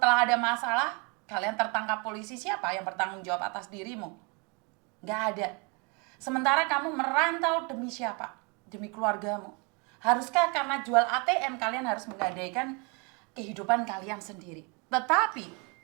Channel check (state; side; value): quieter; left; 31.8 dB